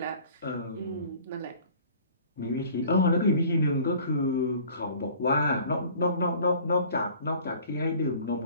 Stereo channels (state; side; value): inverted; both; correlation -0.49